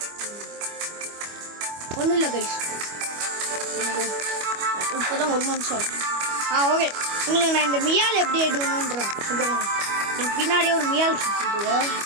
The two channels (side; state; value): left; late; 25 ms